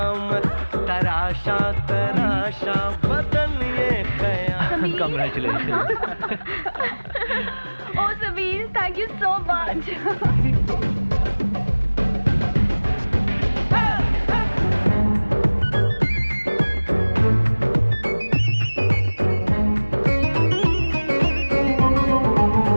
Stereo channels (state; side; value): inverted; both; correlation -1.00